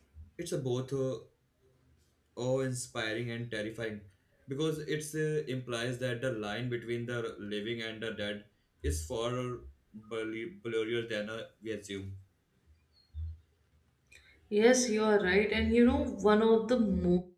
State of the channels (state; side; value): identical; both; correlation 1.00